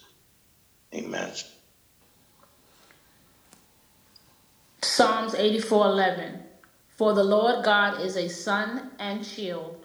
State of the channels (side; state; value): both; identical; correlation 1.00